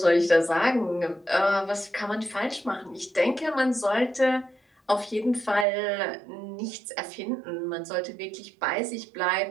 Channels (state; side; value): drops out; left; at 5.7 s